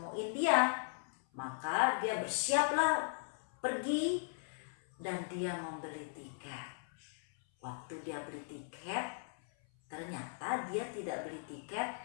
dia. Maka dia bersiaplah pergi dan dia membeli tiket. Waktu dia beli tiket, ternyata dia tidak beli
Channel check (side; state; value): right; silent; 52 dB below the other